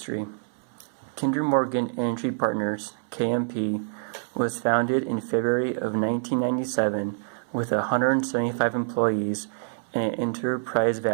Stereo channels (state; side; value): silent; left; 61 dB below the other